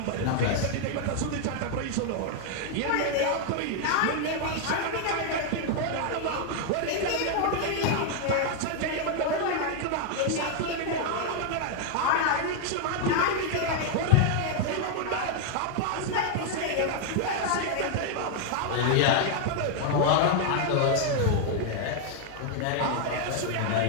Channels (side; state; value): both; different; correlation 0.00